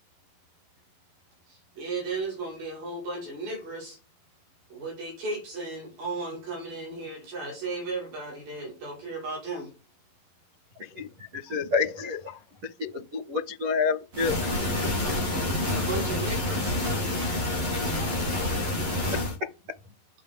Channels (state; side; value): late; left; 11 ms